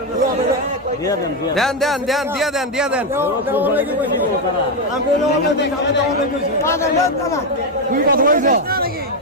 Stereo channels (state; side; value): normal; both; correlation 0.06